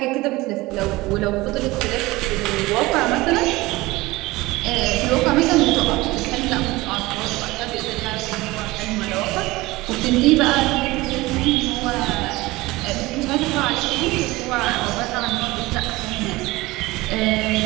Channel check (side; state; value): left; quieter; 20.4 dB